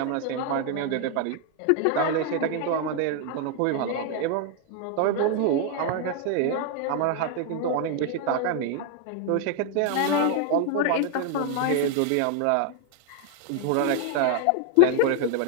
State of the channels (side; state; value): both; different; correlation 0.00